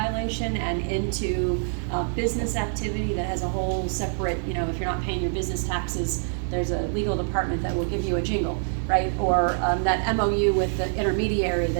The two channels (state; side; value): silent; left; digital silence